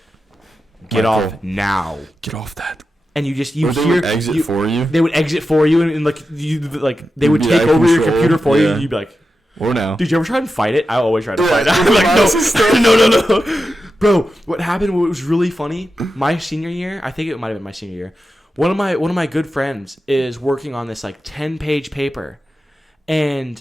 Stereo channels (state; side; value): normal; both; correlation 0.91